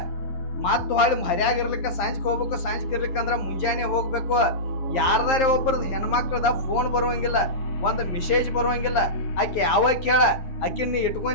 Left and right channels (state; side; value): late; right; 9.9 ms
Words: ಮತ್ ಹೊಳ್ಳಿ ಮರ್ಯಾಗಿರ್ಲಿಕ್ಕ ಸಾಂಜ್ಕ್ ಹೋಗ್ಬೇಕು, ಸಾಂಜ್ಕ್ ಇರ್ಲಿಕ್ಕಂದ್ರ ಮುಂಜಾನೆ ಹೋಗ್ಬೇಕು. ಯಾರ್ದಾರೆ ಒಬ್ಬರದ್ ಹೆಣ್ಮಕ್ಳದ ಫೋನ್ ಬರುವಂಗಿಲ್ಲ, ಒಂದ್ ಮೆಸೇಜ್ ಬರುವಂಗಿಲ್ಲ. ಆಕಿ ಯಾವಾಗ ಕೇಳ ಆಕಿನ್ ನೀ